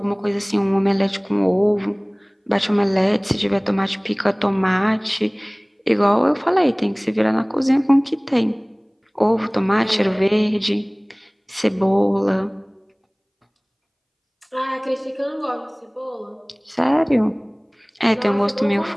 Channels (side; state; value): both; identical; correlation 1.00